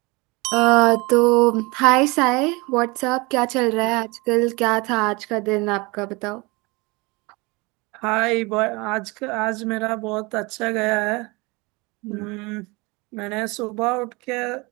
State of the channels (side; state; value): left; quieter; 25.7 dB